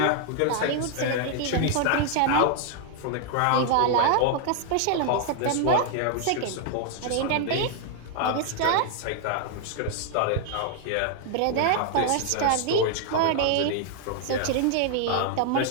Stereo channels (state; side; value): different; both; correlation 0.00